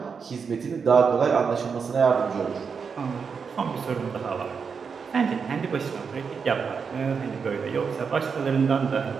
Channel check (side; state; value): left; quieter; 5.9 dB